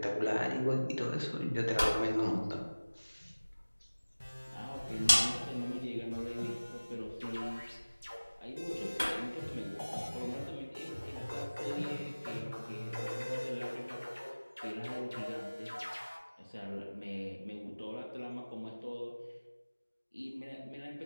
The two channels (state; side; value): inverted; both; correlation -1.00